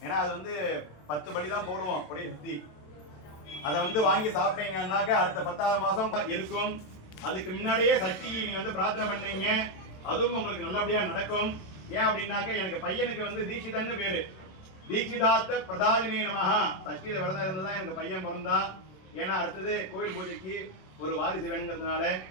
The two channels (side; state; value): right; late; 27 ms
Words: ஏன்னா அது 10 பலி தான் போடுவோம் கொடியை சுத்தி. அதை வாங்கி சாப்பிட்டீங்கன்னாக்க அடுத்த 10ஆவது மாசம் இருக்கும். அதுக்கு முன்னாடியே சக்திக்கு நீ பிரார்த்தனை பண்ணீங்க, அதுவும் உங்களுக்கு நல்லபடியா நடக்கும். ஏன் அப்படின்னாக்க எனக்கு பையனுக்கு தீட்சிதன்னு பேரு. தீட்சிதாத்த பிரதாஜினே நமஹா. சஷ்டியில விரதம் இருந்துதான் எனக்கு பையன் பிறந்தான். ஏன்னா அடுத்தது கோவில் பூஜைக்கு ஒரு வாரிசு வேணுங்கிறதுனால